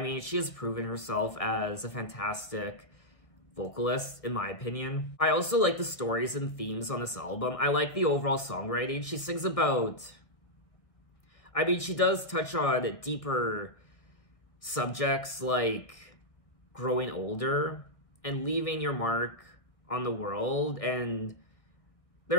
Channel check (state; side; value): late; right; 1.5 ms